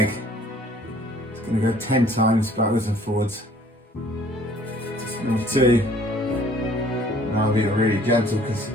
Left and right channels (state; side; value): normal; both; correlation 0.56